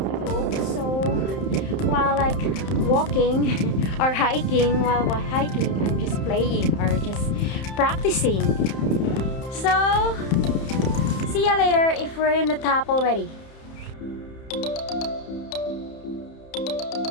book, so while like walking or hiking, I'm just playing or just practicing. So see ya later if we're in the top already.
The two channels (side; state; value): right; late; 31 ms